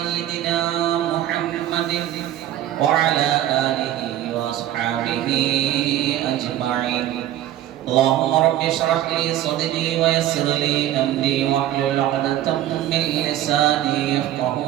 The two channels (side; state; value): left; quieter; 12.8 dB